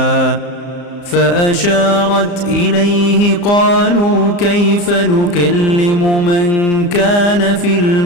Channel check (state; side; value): late; right; 34 ms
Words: فأشارت إليه قالوا كيف نكلم من كان في